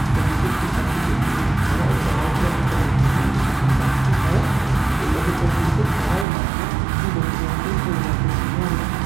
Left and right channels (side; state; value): left; drops out; at 6.2 s